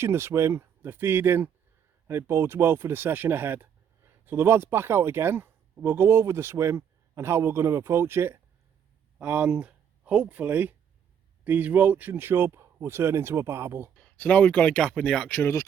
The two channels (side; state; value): left; quieter; 8.2 dB